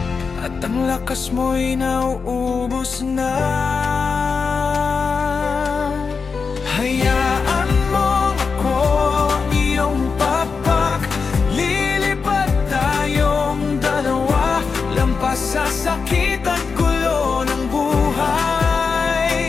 at ang lakas mo'y nauubos na, hayaan mo ako, iyong papak. Lilipad tayong dalawa, lampas sa sakit at gulo ng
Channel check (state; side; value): quieter; right; 5.2 dB